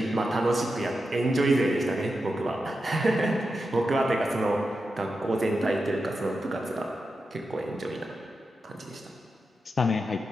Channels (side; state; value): both; normal; correlation 0.89